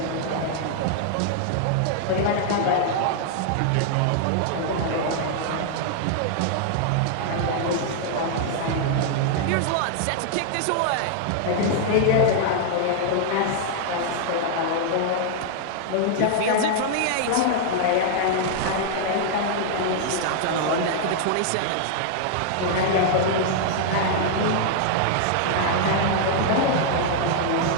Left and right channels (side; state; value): both; different; correlation -0.01